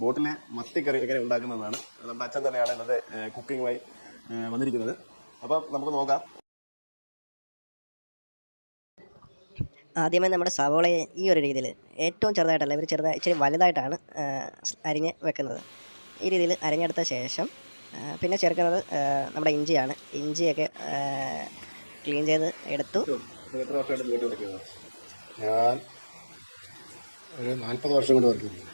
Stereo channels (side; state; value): both; inverted; correlation -1.00